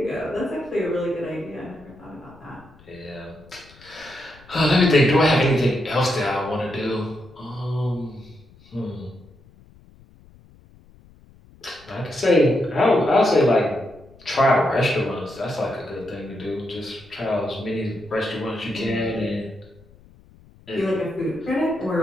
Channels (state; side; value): noise; left; rumble, 25 dB below the sound